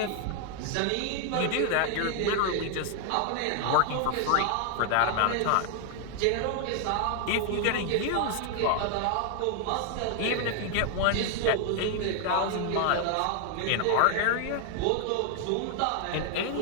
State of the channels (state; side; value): different; both; correlation 0.00